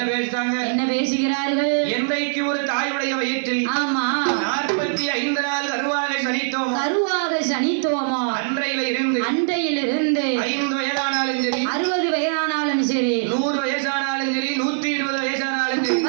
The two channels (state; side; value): silent; left; digital silence